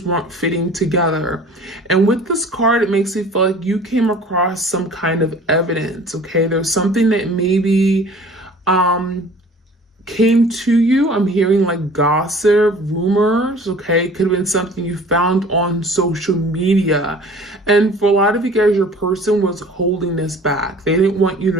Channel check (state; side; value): normal; both; correlation 0.47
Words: weren't fitting together. And with this card, it makes me feel like you came across some kind of evidence, okay? There's something that maybe came to you. I'm hearing like gossip, rumors, okay? It could have been something you found on social media. And for a lot of you guys, your person was holding this back. They didn't want you